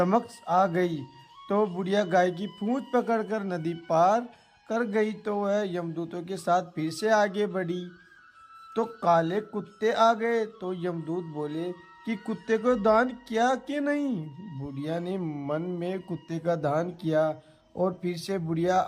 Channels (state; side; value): identical; both; correlation 1.00